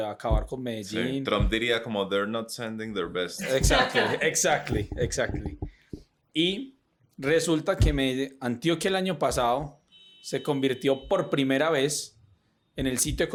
acabar con Sí. Medellín. Trump diría como they're not sending their best. Exactly. Y resulta que Antioquia el año pasado se convirtió por primera vez en el sitio de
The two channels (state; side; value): identical; both; correlation 1.00